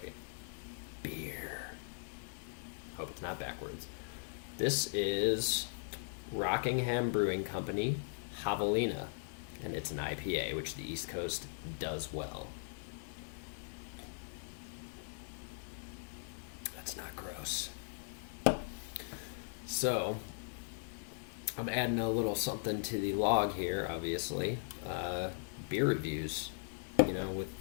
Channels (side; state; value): right; silent; digital silence